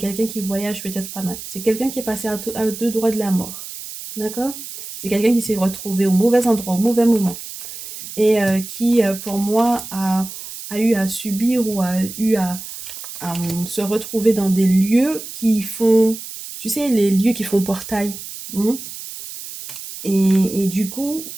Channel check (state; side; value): noise; right; hiss, 11 dB below the sound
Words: qui voyage peut-être pas mal. C'est quelqu'un qui est passé à deux doigts de la mort. D'accord? C'est quelqu'un qui s'est retrouvé au mauvais endroit, au mauvais moment. Et qui, pour moi, a eu à subir ou a eu à se retrouver dans des lieux qui font, tu sais, les lieux qui font portail. Hein. Et du coup,